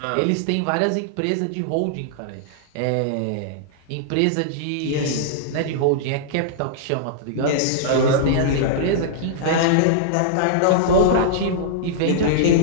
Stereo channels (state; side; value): different; both; correlation -0.02